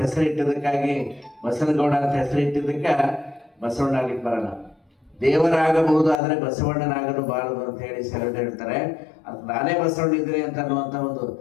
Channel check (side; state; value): right; drops out; at 6.2 s